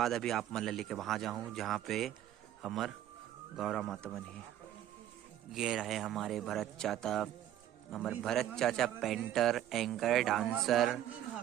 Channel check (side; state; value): left; quieter; 11.8 dB